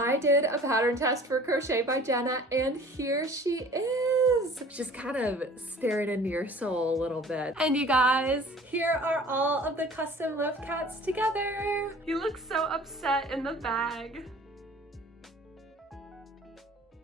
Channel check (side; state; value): both; normal; correlation 0.48